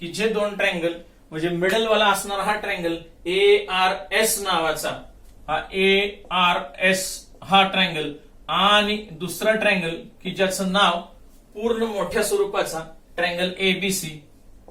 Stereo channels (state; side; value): identical; both; correlation 1.00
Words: की जे दोन ट्रँगल म्हणजे मिडल वाला असणारा हा ट्रँगल ARS नावाचा हा ARS हा ट्रँगल आणि दुसरा ट्रँगल की ज्याचं नाव पूर्ण मोठ्या स्वरूपाचा ट्रँगल ABC,